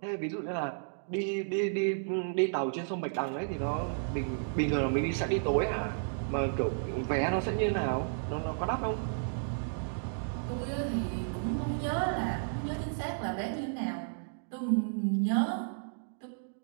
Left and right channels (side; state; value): left; silent; digital silence